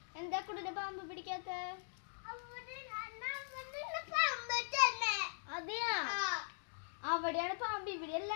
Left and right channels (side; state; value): right; silent; digital silence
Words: എന്താ കുടിനെ പാമ്പ് പിടിക്കാത്ത? അതെയാ, അവിടെയാണ് പാമ്പ്, ഇവിടെയല്ല.